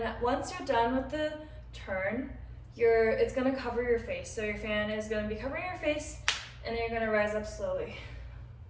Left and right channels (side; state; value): both; identical; correlation 1.00